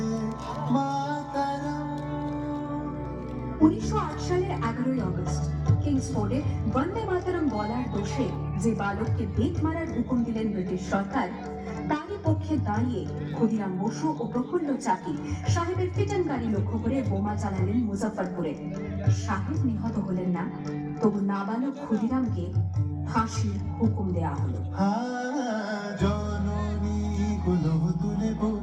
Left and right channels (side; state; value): both; identical; correlation 1.00